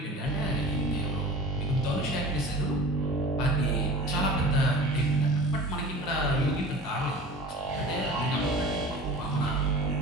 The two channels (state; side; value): normal; both; correlation 0.39